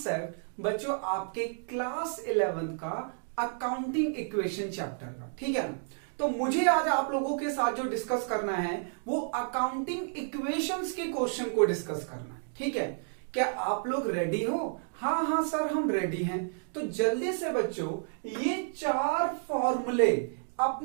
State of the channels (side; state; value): left; silent; digital silence